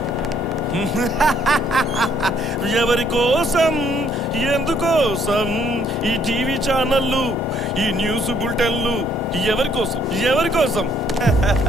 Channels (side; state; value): both; normal; correlation 0.66